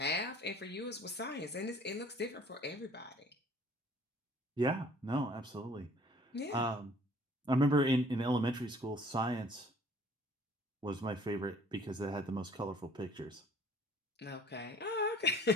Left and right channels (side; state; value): both; normal; correlation 0.54